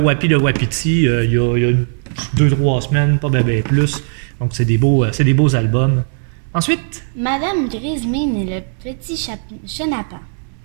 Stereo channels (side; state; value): left; silent; digital silence